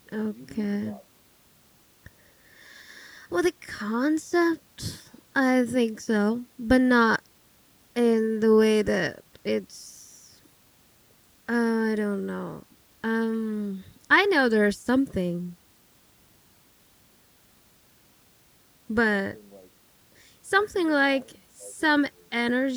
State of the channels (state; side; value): identical; both; correlation 1.00